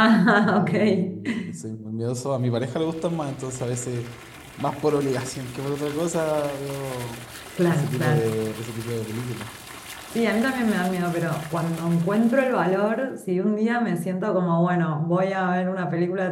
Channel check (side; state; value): both; identical; correlation 1.00